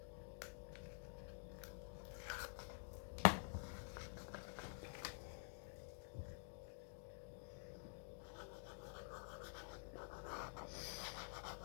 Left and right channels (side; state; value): right; silent; digital silence